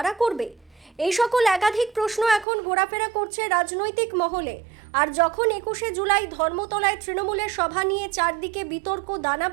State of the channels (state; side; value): drops out; left; at 2.5 s